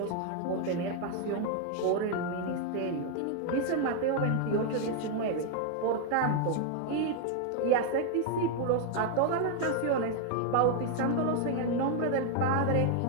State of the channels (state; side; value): different; both; correlation 0.00